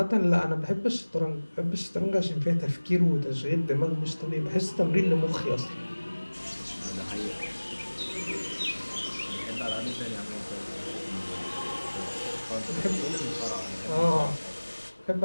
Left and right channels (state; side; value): inverted; both; correlation -1.00